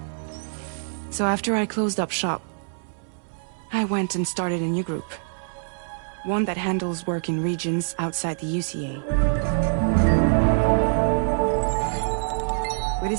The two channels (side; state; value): left; silent; 60 dB below the other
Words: So after I closed up shop, I went and started a new group. One that handles work in regions outside the UCA. We